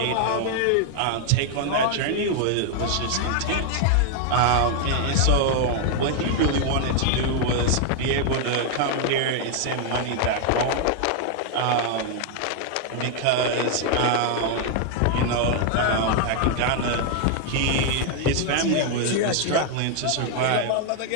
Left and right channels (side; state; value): both; different; correlation 0.00